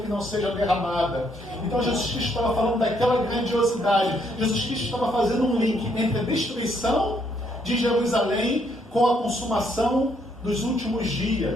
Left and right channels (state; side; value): normal; both; correlation 0.71